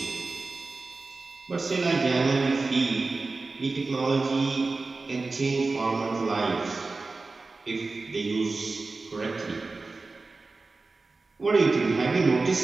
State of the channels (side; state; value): left; quieter; 3.7 dB